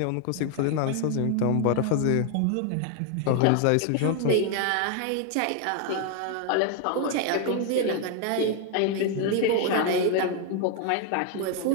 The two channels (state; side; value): different; both; correlation 0.00